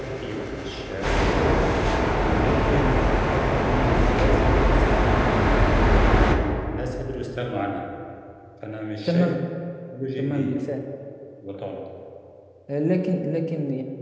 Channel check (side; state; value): both; identical; correlation 1.00